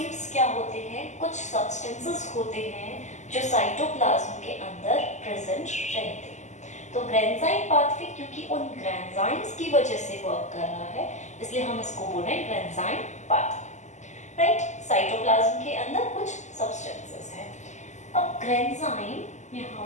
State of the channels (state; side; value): late; right; 0.34 ms